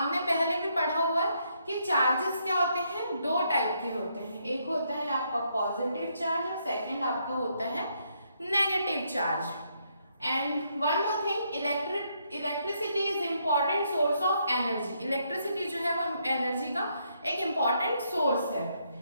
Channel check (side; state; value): both; inverted; correlation -0.75